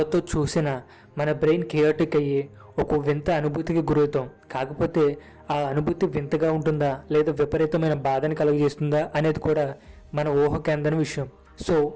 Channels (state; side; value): identical; both; correlation 1.00